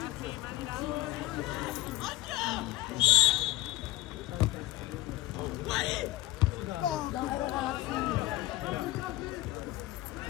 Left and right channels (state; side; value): quieter; right; 17.0 dB